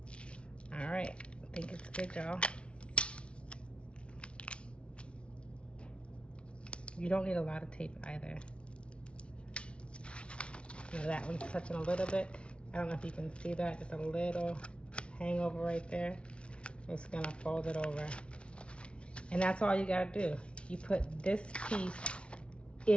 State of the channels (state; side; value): late; right; 0.059 ms